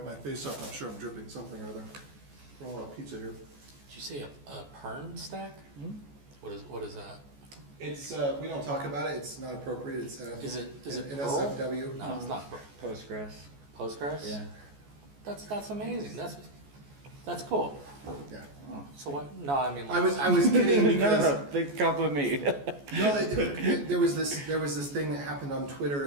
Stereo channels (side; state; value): left; late; 14 ms